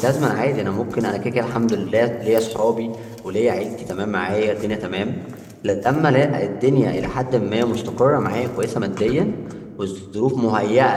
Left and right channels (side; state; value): both; identical; correlation 1.00